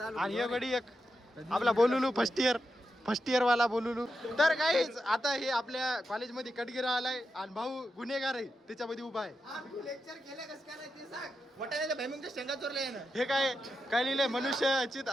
आणि हे गडी एक आपला बोलुलू फर्स्ट इयर वाला बोलुलू. तर काहीच आता हे आपल्या कॉलेजमध्ये कटगिरा आलाय आणि भाऊ गुन्हेगार आहे त्याच्यामध्ये उभा आहे. हे काय काय लिहिलंय? मनुष्य चित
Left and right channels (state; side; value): normal; both; correlation 0.88